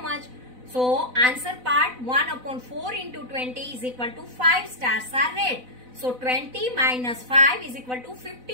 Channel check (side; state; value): left; late; 4.0 ms